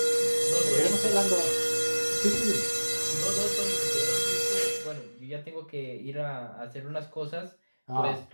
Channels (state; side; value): inverted; both; correlation -1.00